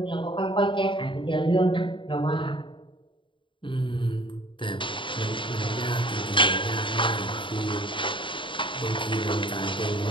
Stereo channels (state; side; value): late; right; 0.24 ms